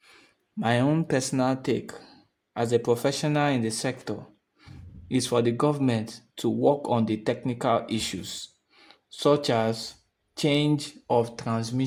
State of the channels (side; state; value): both; identical; correlation 1.00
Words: My own personal take as a professional in the sector is for the government to work on the technical issues such as change of